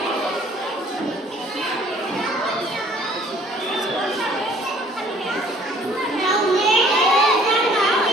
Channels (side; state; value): both; normal; correlation 0.56